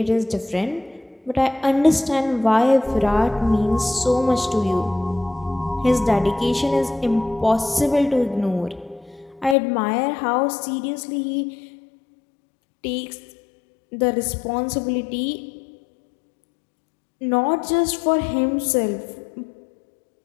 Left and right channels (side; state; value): right; drops out; at 9.6 s